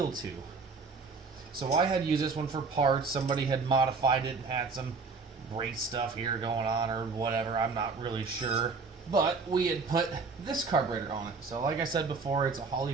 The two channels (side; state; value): left; quieter; 4.5 dB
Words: to. So I had used this one for parts. Somebody had modified it and had some brake stuff here going on or whatever. I'm not really sure. But we had put this carburetor on it. So like I said before, it's a